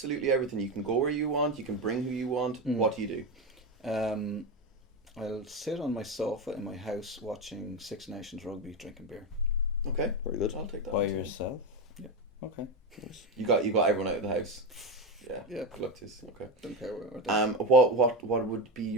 everything. You can go where you want. You can bring who you want. What do you do? I'll sit on my sofa in my house watching Six Nations rugby, drinking beer. Okay, very good. I'll take that. By yourself? Yeah. Okay. You got everyone out of the house. Yeah. Yeah. Good luck to you. Okay. Don't care where. What would be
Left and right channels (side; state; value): both; normal; correlation 0.15